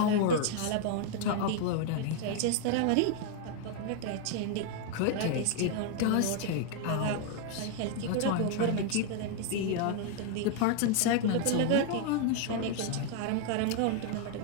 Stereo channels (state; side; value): different; both; correlation 0.00